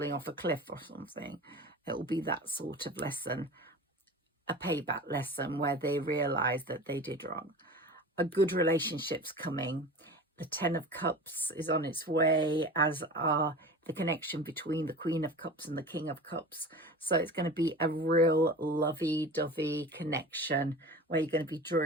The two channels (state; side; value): normal; both; correlation 0.35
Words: off a cliff or something. It will be that sort of lesson, a payback lesson where they realize that they did wrong. A good relationship's coming. The 10 of Cups is on its way, as are the connection between the Queen of Cups and the King of Cups. So it's going to be a real lovey-dovey connection where you're going to be